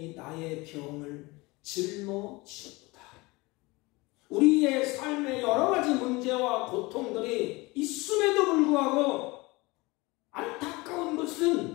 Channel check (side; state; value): right; quieter; 23.4 dB